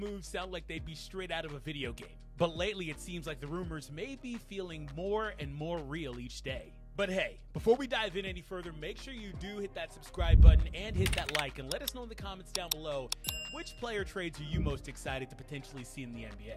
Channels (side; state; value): both; identical; correlation 1.00